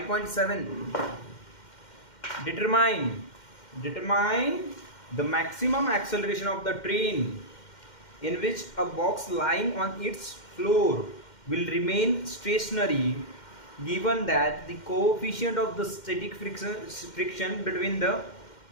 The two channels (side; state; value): right; late; 2.1 ms